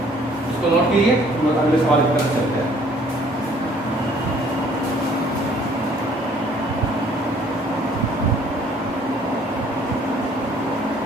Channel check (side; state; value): both; normal; correlation 0.58